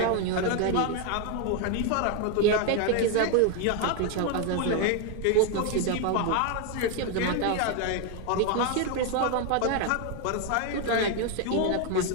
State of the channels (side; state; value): both; different; correlation 0.01